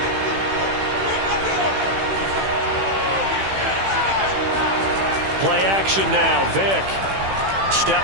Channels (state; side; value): late; left; 15 ms